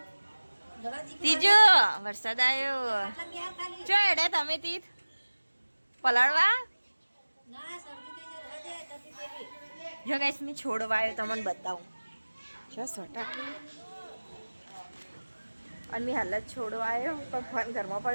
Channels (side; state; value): both; inverted; correlation -1.00